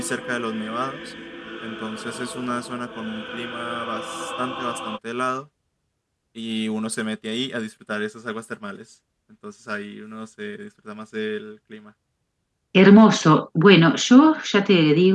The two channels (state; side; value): identical; both; correlation 1.00